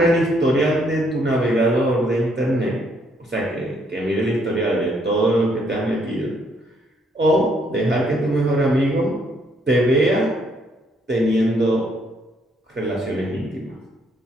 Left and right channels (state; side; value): normal; both; correlation 0.70